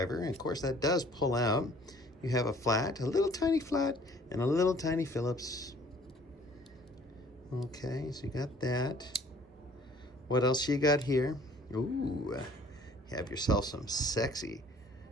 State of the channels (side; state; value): both; normal; correlation 0.55